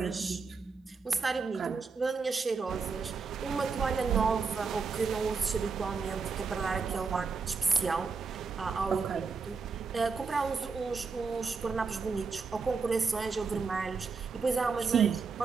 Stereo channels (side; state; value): left; quieter; 4.9 dB